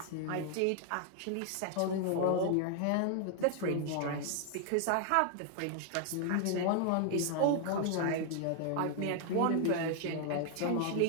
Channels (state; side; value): different; both; correlation 0.00